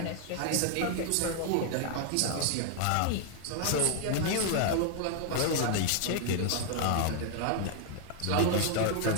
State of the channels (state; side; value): different; both; correlation 0.00